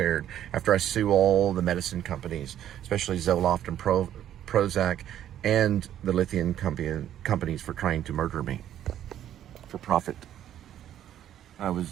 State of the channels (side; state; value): left; quieter; 11.1 dB